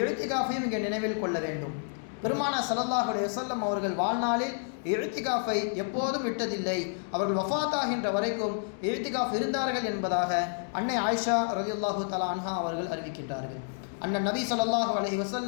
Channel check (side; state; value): right; silent; digital silence